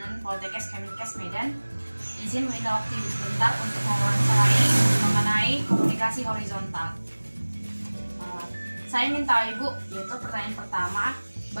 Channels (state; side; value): inverted; both; correlation -1.00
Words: Poltekkes Kemenkes Medan. Izin meminta waktu Ibu sebentar untuk mewawancarai mengenai komunikasi horizontal. Saya ingin tahu Ibu, yaitu pertanyaan pertama,